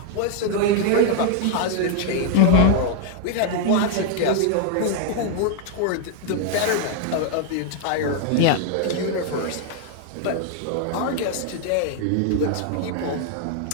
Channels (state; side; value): different; both; correlation 0.00